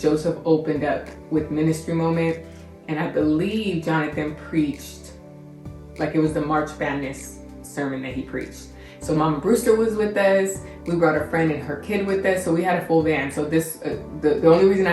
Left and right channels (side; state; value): both; identical; correlation 1.00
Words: opened up with Ministry Moment. And I believe Jonathan preached, like it was the March Madness sermon that he preached. So Mama Brewster was with us. We brought a friend and her kid with us. So we had a full van. So this, the only reason